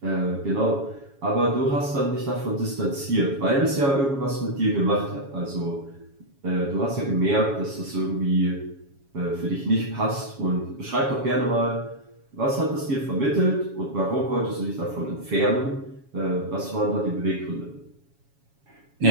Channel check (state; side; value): late; left; 7.2 ms